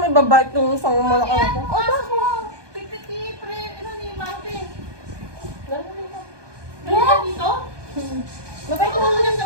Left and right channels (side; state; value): left; late; 1.2 ms